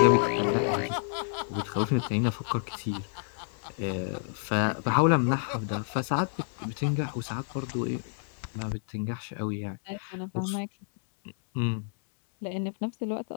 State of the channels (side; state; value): right; silent; 58 dB below the other